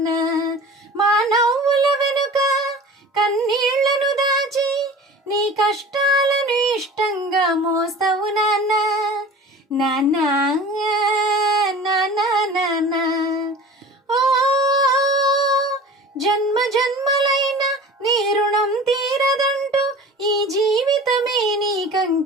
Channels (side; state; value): both; normal; correlation 0.40